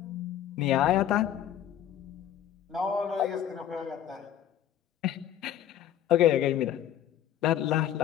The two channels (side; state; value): right; quieter; 10.7 dB